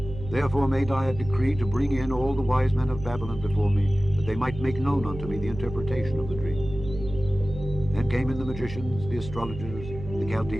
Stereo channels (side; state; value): right; noise; hum, 11 dB below the sound